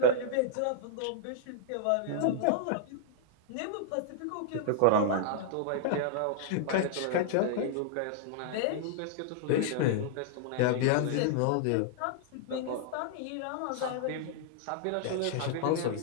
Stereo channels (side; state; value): both; different; correlation -0.01